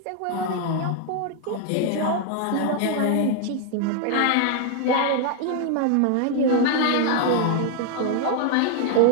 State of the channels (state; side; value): different; both; correlation 0.00